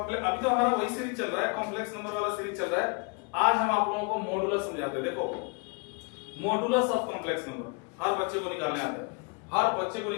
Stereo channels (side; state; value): right; quieter; 32.5 dB